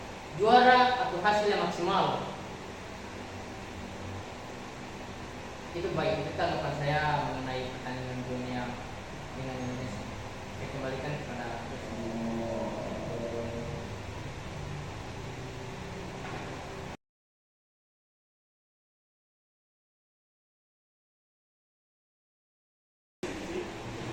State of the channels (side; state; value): both; identical; correlation 1.00